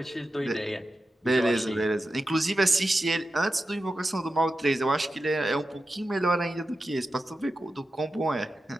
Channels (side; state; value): both; normal; correlation 0.91